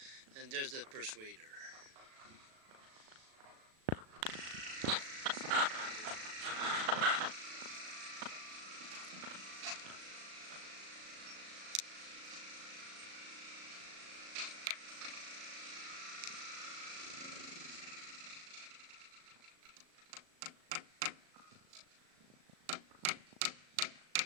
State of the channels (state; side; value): late; left; 37 ms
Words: and there's the persuader.